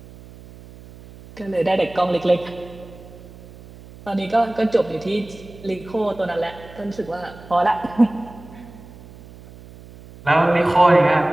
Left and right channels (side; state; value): right; noise; hum, 20 dB below the sound